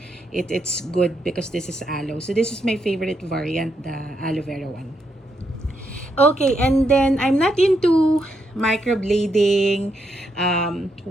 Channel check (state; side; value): normal; both; correlation 0.79